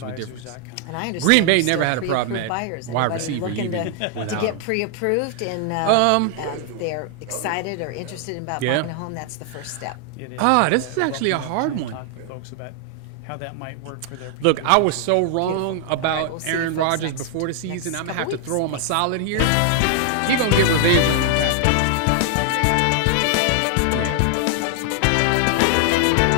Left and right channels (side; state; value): both; different; correlation 0.00